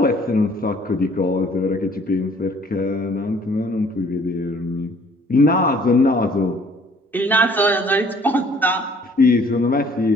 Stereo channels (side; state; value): both; normal; correlation 0.57